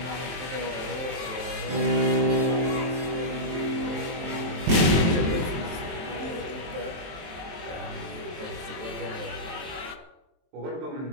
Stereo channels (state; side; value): late; left; 23 ms